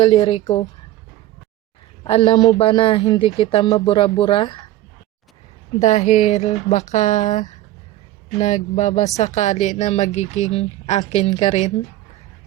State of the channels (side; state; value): left; quieter; 14.6 dB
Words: ko. Alam mo ba na hindi kita mabura-bura? Dahil baka nagbabasakali na magiging akin ka rin.